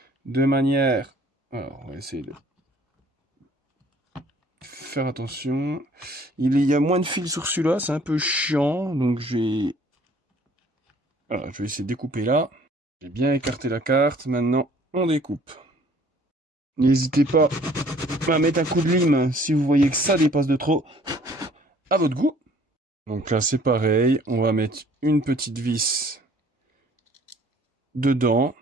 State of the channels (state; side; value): normal; both; correlation 0.56